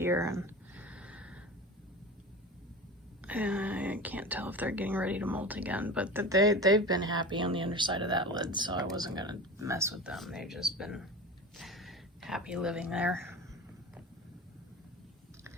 and I can't tell if they're getting ready to molt again, but they've been happy on the underside of that lid, so I wasn't gonna mess with them. They've just been happy living there.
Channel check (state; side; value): normal; both; correlation 0.32